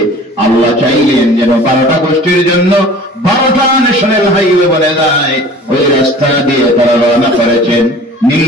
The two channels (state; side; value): normal; both; correlation 0.45